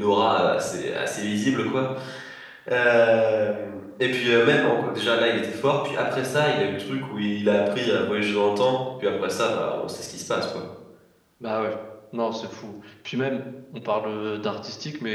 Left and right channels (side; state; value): both; identical; correlation 1.00